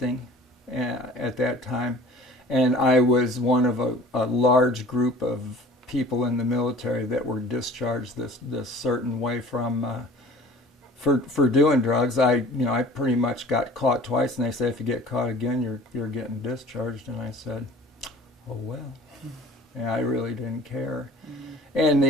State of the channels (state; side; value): normal; both; correlation 0.46